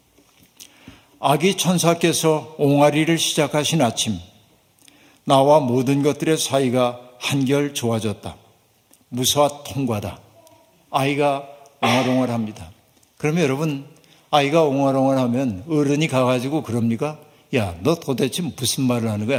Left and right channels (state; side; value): identical; both; correlation 1.00